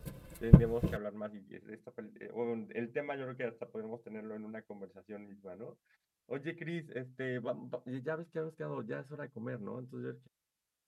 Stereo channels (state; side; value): identical; both; correlation 1.00